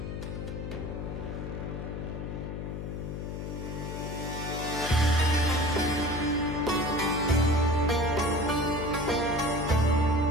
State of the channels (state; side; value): noise; left; hum, 5 dB below the sound